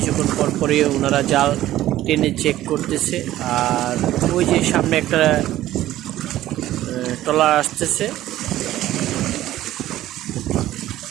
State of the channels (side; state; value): left; quieter; 14.3 dB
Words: পর পরে ওনারা জাল টেনে চেক করতেছে। আর ওই যে সামনে একটা ট্রলার